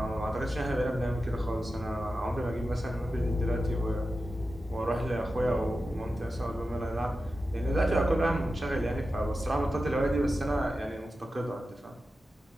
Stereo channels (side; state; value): both; normal; correlation 0.92